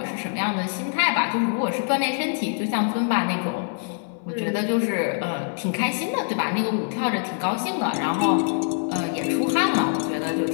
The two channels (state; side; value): silent; right; 62 dB below the other